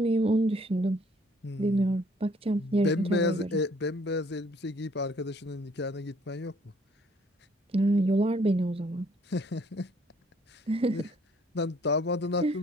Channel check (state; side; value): normal; both; correlation 0.62